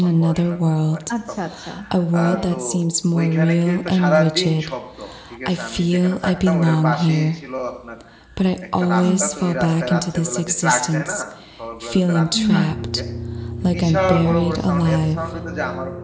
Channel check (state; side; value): identical; both; correlation 1.00